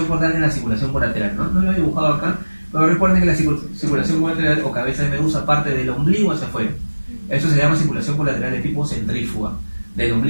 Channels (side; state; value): both; inverted; correlation -1.00